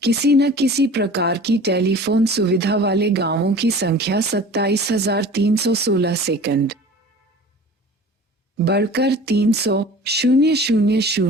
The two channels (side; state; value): both; normal; correlation 0.42